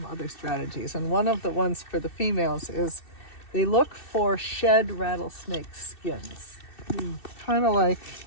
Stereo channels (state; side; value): late; right; 2.6 ms